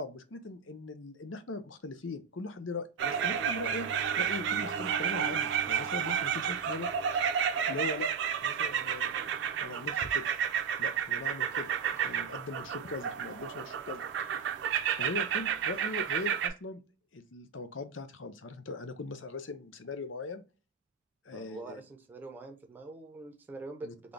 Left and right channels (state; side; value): quieter; left; 5.7 dB